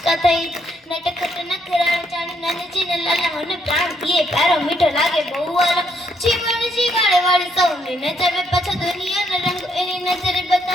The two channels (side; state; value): both; normal; correlation 0.73